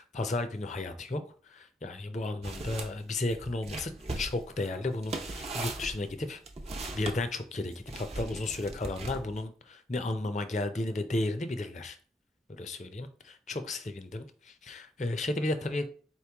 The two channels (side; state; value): both; normal; correlation 0.74